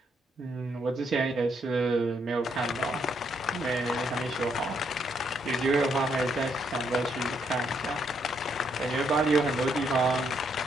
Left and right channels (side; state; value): both; normal; correlation 0.74